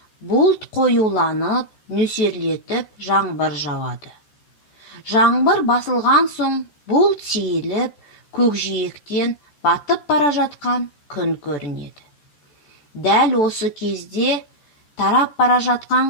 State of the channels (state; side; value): late; right; 14 ms